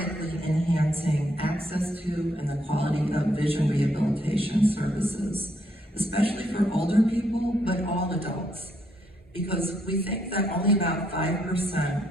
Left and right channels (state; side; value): normal; both; correlation 0.74